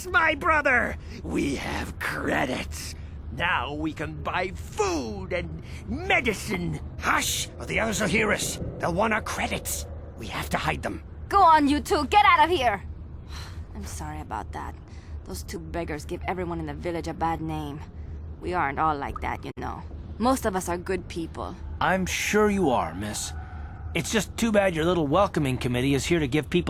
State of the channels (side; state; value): both; identical; correlation 1.00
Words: my brother! We have credits. Now we can buy food and medicine. Hush, or the others will hear us. They'll want our credits. We have to hide them. Go on, you two. Get out of here. I'm sorry about that. Those 2 beggars give everyone in the village a bad name. We aren't all like that, you know. Most of us are good people. I'm sure you are, miss. It's just too bad your little welcoming committee is here to give